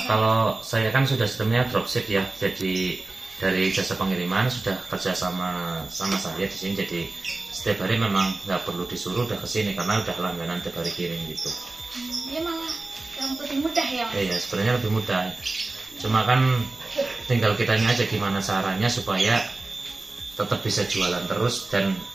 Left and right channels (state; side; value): quieter; left; 3.2 dB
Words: Kalau saya kan sudah sistemnya dropship ya, jadi dari jasa pengiriman sudah kerja sama saya di sini, jadi setiap hari memang nggak perlu disuruh udah kesini karena udah langganan tiap hari kirim gitu. Dia malah yang lebih mudah ya Mas? Iya, sebenarnya lebih mudah. Cuma kan tinggal kitanya aja gimana caranya supaya tetap bisa jualan terus dan